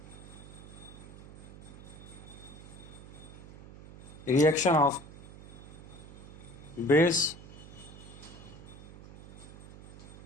reaction of base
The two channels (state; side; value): noise; right; hum, 16 dB below the sound